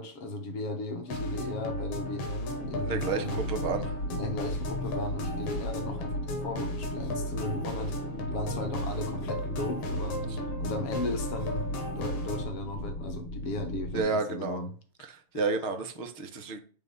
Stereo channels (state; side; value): late; right; 7.2 ms